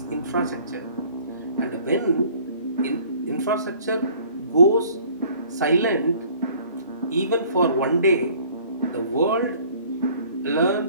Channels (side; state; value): both; inverted; correlation -0.54